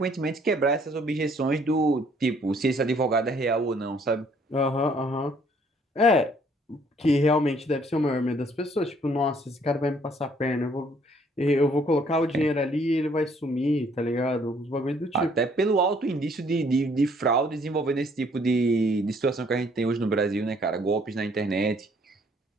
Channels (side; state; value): both; normal; correlation 0.63